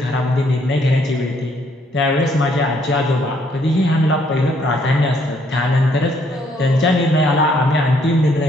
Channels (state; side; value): normal; both; correlation 0.68